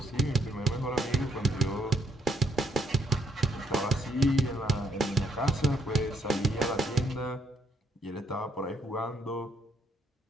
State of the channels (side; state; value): both; normal; correlation 0.71